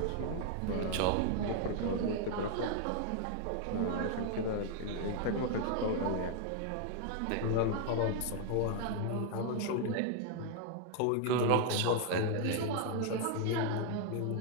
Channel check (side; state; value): both; different; correlation 0.00